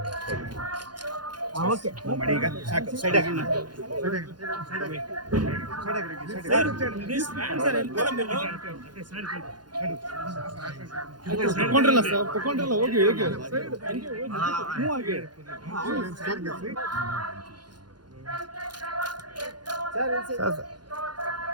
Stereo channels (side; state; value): left; late; 0.70 ms